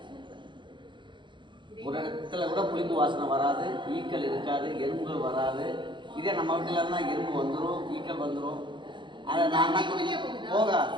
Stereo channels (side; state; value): left; late; 0.23 ms